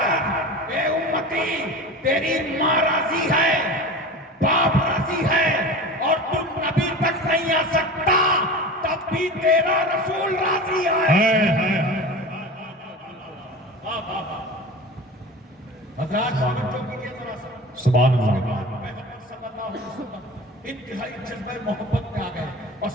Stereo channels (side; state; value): both; normal; correlation 0.33